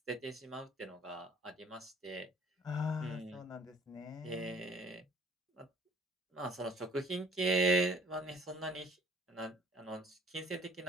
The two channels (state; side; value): normal; both; correlation 0.54